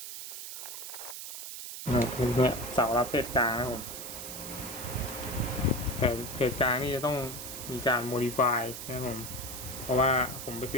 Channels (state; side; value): noise; right; hiss, 9 dB below the sound